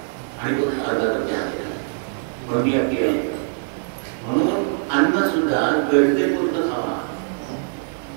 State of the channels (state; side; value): silent; left; 64 dB below the other